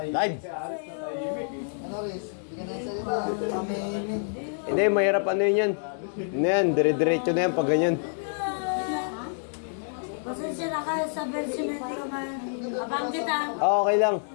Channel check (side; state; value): right; silent; digital silence